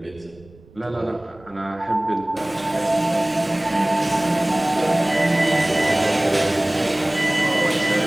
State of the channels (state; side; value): noise; right; rumble, 25 dB below the sound